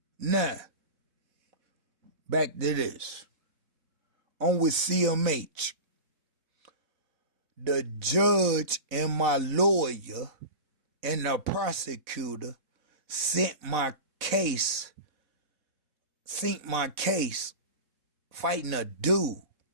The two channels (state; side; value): late; left; 4.0 ms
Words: Now, back to this. On with CMH. The judge and my lawyer and the prosecutor sent my case fighting a dude.